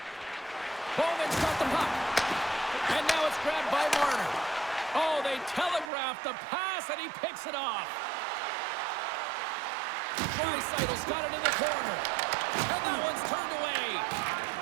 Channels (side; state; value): left; drops out; at 5.9 s